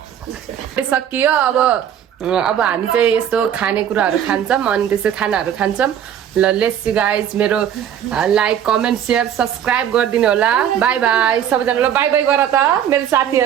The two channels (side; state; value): left; quieter; 9.7 dB